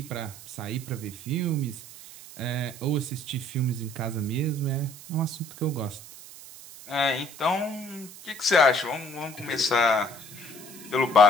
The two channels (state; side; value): noise; right; hiss, 16 dB below the sound